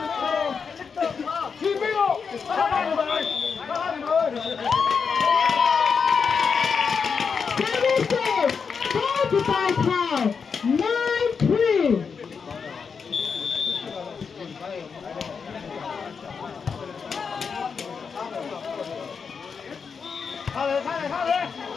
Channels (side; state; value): right; quieter; 5.8 dB